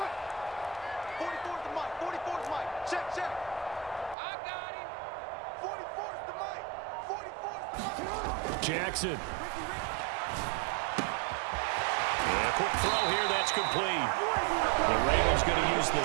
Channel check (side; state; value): left; drops out; at 4.2 s